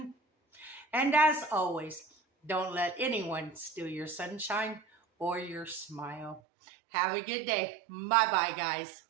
And as always, don't let anyone steal your sunshine or your smile. Have a good day. Bye-bye, guys.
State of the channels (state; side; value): drops out; left; at 6.4 s